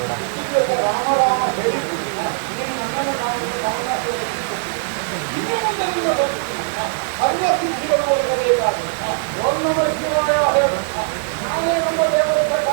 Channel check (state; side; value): silent; left; 60 dB below the other